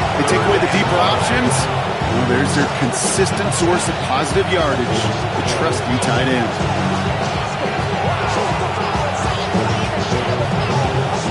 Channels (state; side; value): identical; both; correlation 1.00